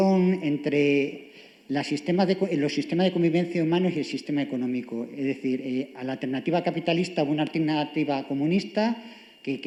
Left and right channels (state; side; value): identical; both; correlation 1.00